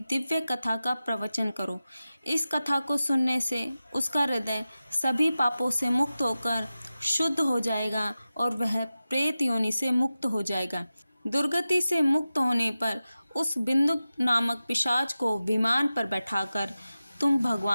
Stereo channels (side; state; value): both; inverted; correlation -0.94